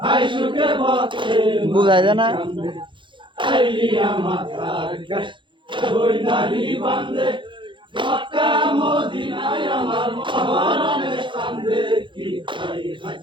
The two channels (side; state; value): left; late; 0.23 ms